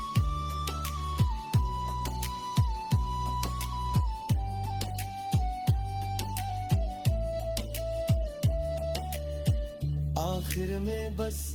आखिर में बस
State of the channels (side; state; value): both; identical; correlation 1.00